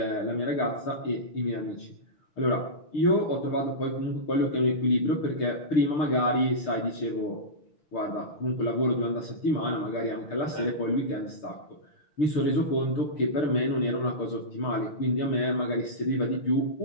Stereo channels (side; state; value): right; late; 6.6 ms